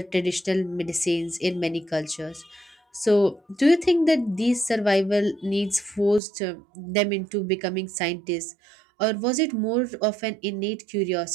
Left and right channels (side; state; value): left; drops out; at 6.2 s